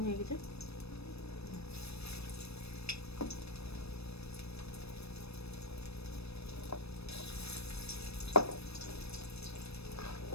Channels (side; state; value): right; late; 0.78 ms